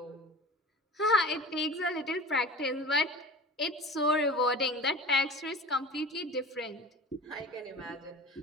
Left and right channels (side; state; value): both; normal; correlation 0.37